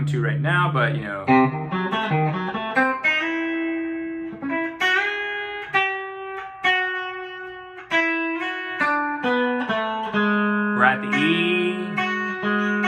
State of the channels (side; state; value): both; identical; correlation 1.00